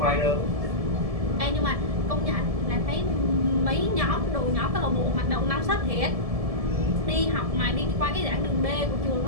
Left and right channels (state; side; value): late; left; 1.7 ms